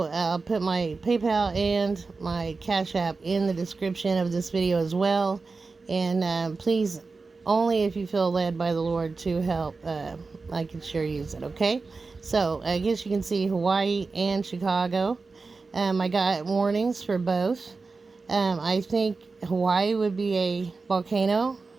I'll put my PayPal and my Cash App in the description of this video as well. And please, only if you feel led by the Lord to help, I can sure use it, okay? So I guess you can see Hawaii and Chicago. I got warnings for both. I think Hawaii would be a volcano.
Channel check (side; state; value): left; quieter; 4.1 dB